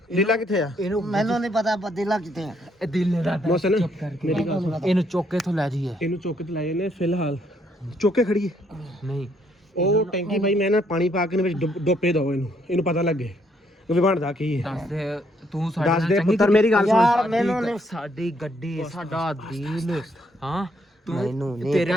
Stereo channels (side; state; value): both; normal; correlation 0.71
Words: ਲੀਲਾ ਕਿੱਥੇ ਆ ਇਹਨੂੰ ਮੈਨੂੰ ਨਹੀਂ ਪਤਾ ਅਦੀਲਾ ਕਿੱਥੇ ਆ। ਇਹ ਦਿਲ ਨੇ ਰਾਤ ਮੋਸਨ ਚੁੱਪ ਕਰਕੇ ਮੇਰੀ ਗੱਲ ਸੁਣ ਇਹਨੂੰ ਚੁੱਕ ਕੇ ਤੋਂ ਲੈ ਜਾਈਏ। ਇਹਨੂੰ ਚੁੱਕ ਤੇ ਲਾਏ ਨੇ ਫਿਲਹਾਲ ਚੁੱਕ ਕੇ ਖੜੀਏ ਨਹੀਂ ਉਹ ਟੈਂਕੀ ਭਾਈ ਮੈਂ ਨਾ ਪਾਣੀ ਪਾ ਕੇ ਨੇ ਵਿੱਚ ਡੋਪੇ ਦੋ ਇਹਨੂੰ ਪਤਾ ਲੱਗੇ ਵੀ ਬਣਦਾ ਕੀ ਹੈ ਦੱਸ ਦੇ ਤੂੰ ਸਾਡੇ ਦੱਸ ਨਾਲ ਦੇ ਚੰਗੀ ਪੁੱਤਰ ਮੇਰੀ ਗੱਲ ਯਾਰ ਸੁਣ ਮੈਨੂੰ ਨਹੀਂ ਸਾਡੀ ਗੱਡੀ ਸਾਡਾ ਦਿਲ ਹਾਂ ਮੈਨੂੰ ਨਹੀਂ ਤੇਰੇ